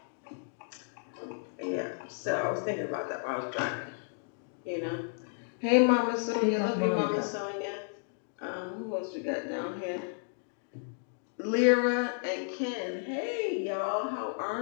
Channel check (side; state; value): right; silent; digital silence